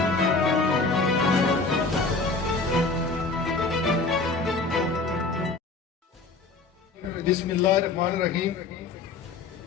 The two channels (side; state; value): right; quieter; 3.9 dB